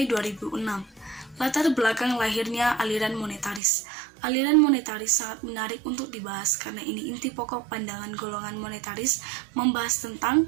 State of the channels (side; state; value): left; drops out; at 3.6 s